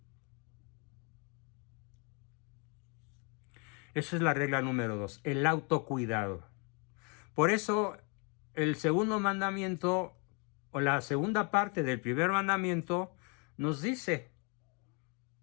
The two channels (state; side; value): quieter; right; 34.1 dB